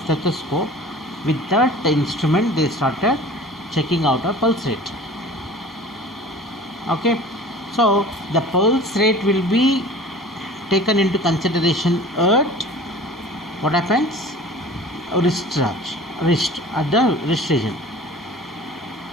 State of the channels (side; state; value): both; normal; correlation 0.43